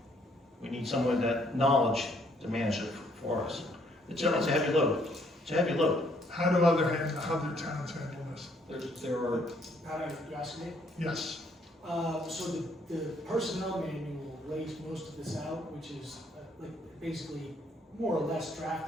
We need someone with that knowledge to manage it for us. It's a heavy load. It's a heavy load. How do other towns handle this? There are, How do you ask me? Yes. So the personnel manual lays most of this out, which is like basically more or less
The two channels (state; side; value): normal; both; correlation 0.67